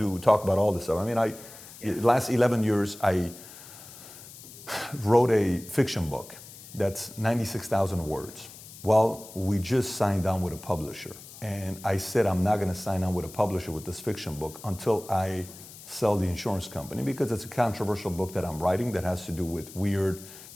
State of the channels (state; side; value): noise; left; hiss, 17 dB below the sound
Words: talk about all this stuff. I mean, last 11 years, I wrote a fiction book that's 96,000 words. Well, we just signed on with a publisher. And I said, I'm not going to sign on with a publisher with this fiction book until I sell the insurance company because it's a controversial book that I'm writing that has to do with weird.